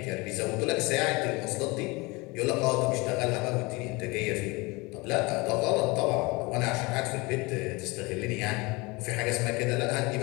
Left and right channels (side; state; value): right; quieter; 25.1 dB